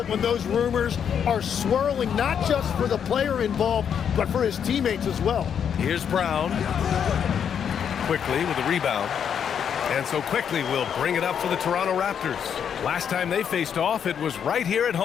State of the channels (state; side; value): quieter; right; 8.0 dB